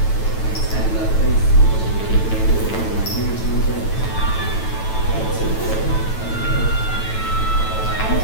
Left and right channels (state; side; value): late; right; 9.1 ms